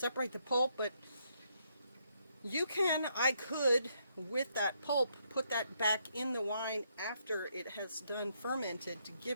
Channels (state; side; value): inverted; both; correlation -0.74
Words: the pulp. But you can, I could, with that pulp, put that back in the wine after it has done fermented to